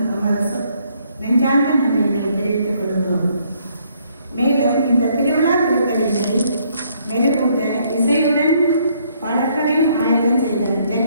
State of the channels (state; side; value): inverted; both; correlation -0.68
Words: நமது நெஞ்சார்ந்த நன்றியினை தெரிவித்துக் கொள்கிறோம். மேலும் இந்த திருவிழா திருத்தலினை மெருகூட்ட இசையுடன் பாடல்களையும் ஆயத்தம் செய்த